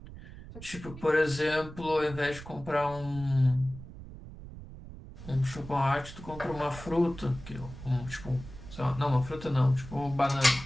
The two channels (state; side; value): noise; right; rumble, 14 dB below the sound